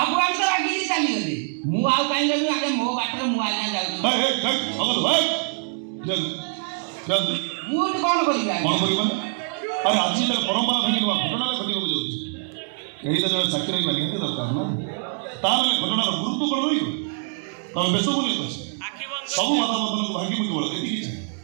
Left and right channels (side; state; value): left; silent; 63 dB below the other